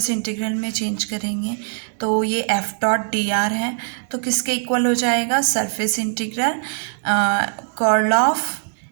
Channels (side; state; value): left; silent; digital silence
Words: इंटीग्रल में चेंज करेंगे, तो ये एफ डॉट डी आर है, तो किसके इक्वल हो जाएगा surface integral curl of